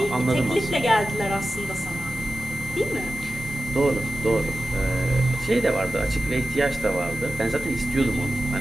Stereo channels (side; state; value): both; normal; correlation 0.94